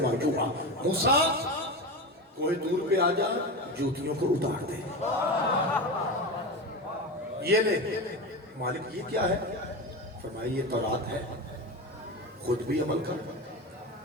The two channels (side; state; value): both; normal; correlation 0.22